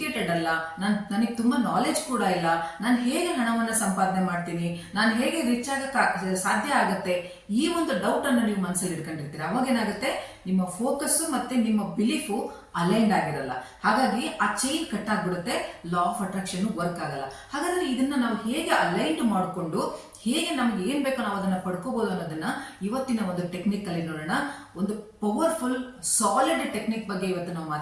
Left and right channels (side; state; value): both; identical; correlation 1.00